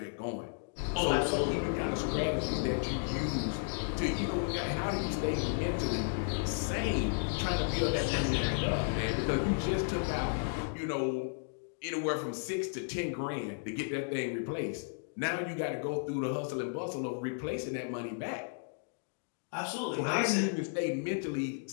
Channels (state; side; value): silent; right; digital silence